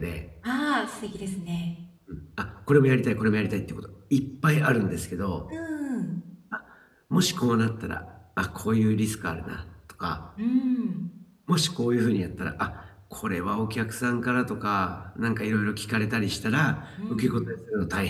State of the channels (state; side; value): identical; both; correlation 1.00